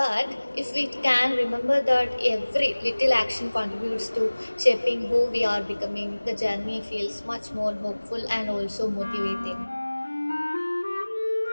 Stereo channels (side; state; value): both; inverted; correlation -1.00